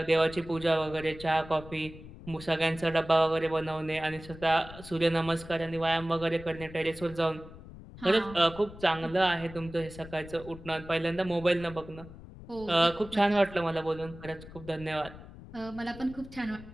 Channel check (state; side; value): noise; left; rumble, 16 dB below the sound